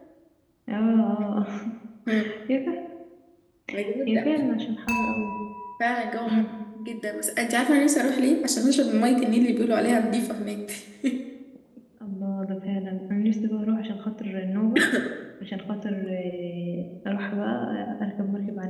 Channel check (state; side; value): identical; both; correlation 1.00